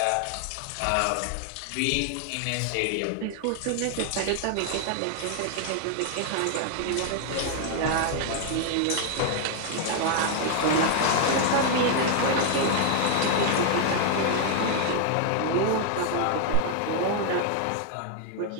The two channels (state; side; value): different; both; correlation 0.00